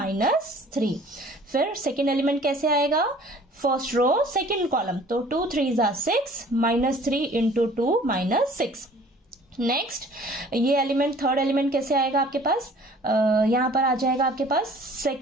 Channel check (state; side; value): normal; both; correlation 0.51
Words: फिर सेकेंड एलिमेंट कैसे आएगा, फर्स्ट रो सेकेंड कॉलम, तो 2 3 6 -3 इंटू 2 -6। नेक्स्ट ये एलिमेंट थर्ड एलिमेंट कैसे आएगा आपके पास, यहाँ पर आ जाएगा आपके पास